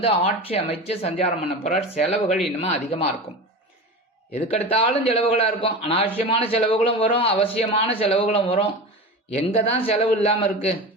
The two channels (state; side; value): normal; both; correlation 0.29